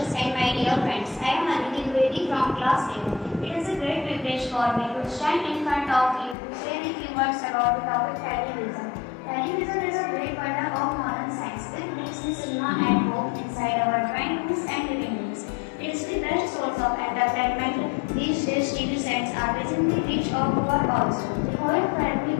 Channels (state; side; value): drops out; right; at 6.4 s